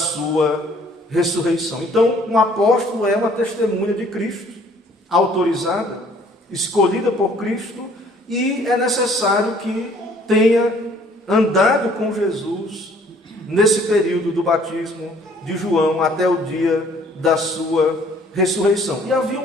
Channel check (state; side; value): normal; both; correlation 0.58